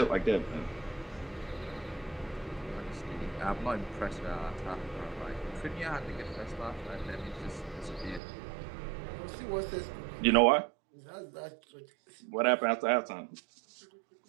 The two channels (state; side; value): drops out; left; at 8.2 s